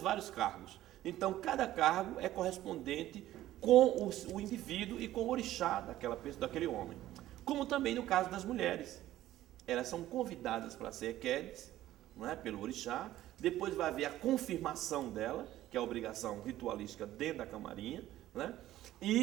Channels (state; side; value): quieter; left; 14.2 dB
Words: cargos. Então, cada cargo é correspondente com o indivíduo e com o orixá daquela pessoa, daquele homem. Como também no caso das mulheres. Elas são convidadas para ser Ekedes, não é? Pelo orixá, depois vai haver a confirmação dela, que é a obrigação ritualística dentro da camarinha, né?